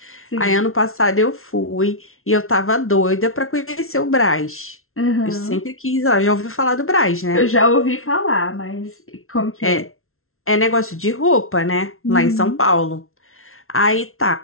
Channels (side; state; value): right; late; 0.62 ms